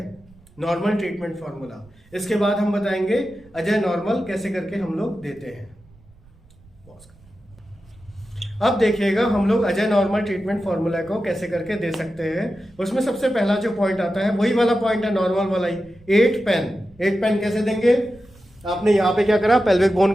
नॉर्मल ट्रीटमेंट फॉर्मूला। इसके बाद हम बताएंगे अजय नॉर्मल कैसे करके हम लोग देते हैं। अब देखिएगा हम लोग अजय नॉर्मल ट्रीटमेंट फॉर्मूला को कैसे करके दे सकते हैं। उसमें सबसे पहला जो पॉइंट आता है वही वाला पॉइंट है, नॉर्मल वाला ही, 8 पेन। 8 पेन कैसे देंगे, आपने यहाँ पे क्या करा, पेल्विक बोन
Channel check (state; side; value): noise; right; rumble, 27 dB below the sound